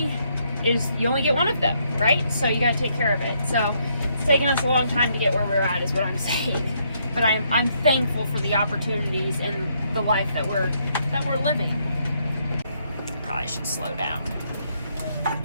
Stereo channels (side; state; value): both; inverted; correlation -0.73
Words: you only get one of them, right? So you got to take care of it. So it's taken us a long time to get where we're at, is what I'm saying. But I'm thankful for the opportunities and the life that we're living. Probably should slow down.